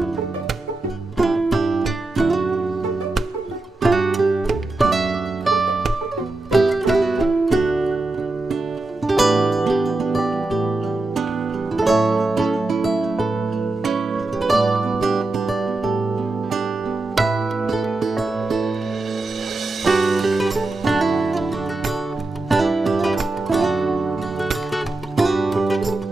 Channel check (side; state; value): left; quieter; 3.1 dB